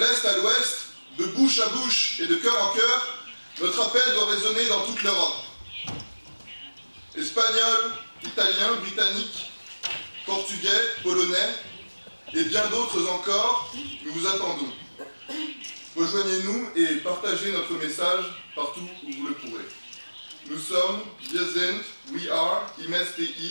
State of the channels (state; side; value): inverted; both; correlation -1.00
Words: à l'ouest, de bouche à bouche et de cœur en cœur, notre appel doit résonner dans toute l'Europe. Espagnols, Italiens, Britanniques, Portugais, Polonais et bien d'autres encore, nous vous attendons. Rejoignez-nous et partagez notre message partout où vous le pourrez. Nous sommes, wir sind, we are,